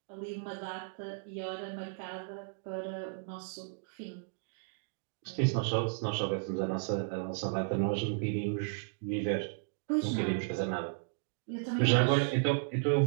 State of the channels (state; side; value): silent; left; digital silence